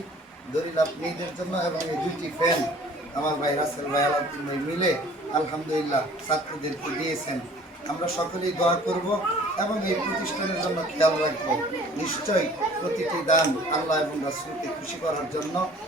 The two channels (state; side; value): normal; both; correlation 0.51